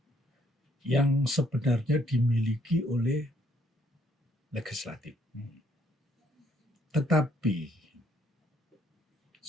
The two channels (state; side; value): normal; both; correlation 0.68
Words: yang sebenarnya dimiliki oleh legislatif. Tetapi